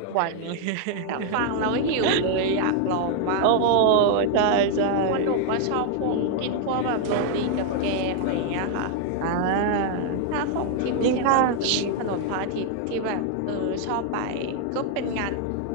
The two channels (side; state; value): both; different; correlation 0.00